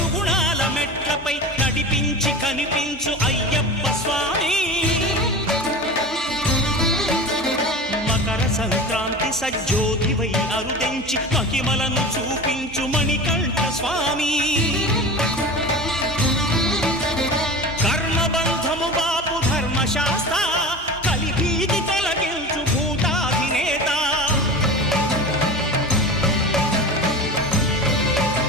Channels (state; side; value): normal; both; correlation 0.32